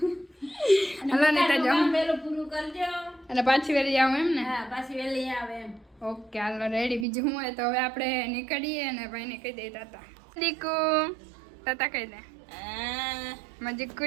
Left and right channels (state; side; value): drops out; left; at 7.1 s